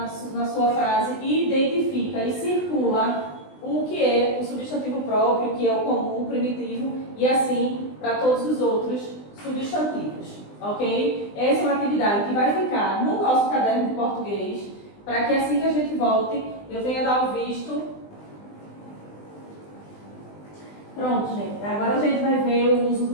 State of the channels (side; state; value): right; late; 20 ms